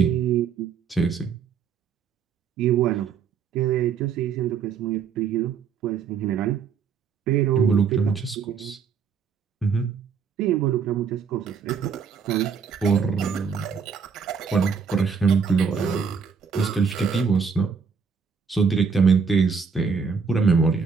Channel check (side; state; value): left; quieter; 6.1 dB